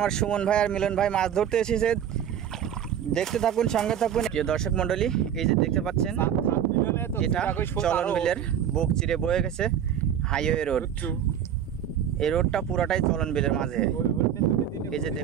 সুমন ভাই আর মিলন ভাই মাছ ধরতে এসেছে। দেখতে থাকুন, সঙ্গে থাকুন। প্রিয় দর্শক মণ্ডলী, এই যে দেখতে পাচ্ছেন, এটা চলন বিলের বুক চিরে বয়ে গেছে হাইওয়ে রোড। এই রোডটা পুরাটাই চলন বিলের মাঝে। এই যে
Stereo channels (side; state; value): left; quieter; 9.4 dB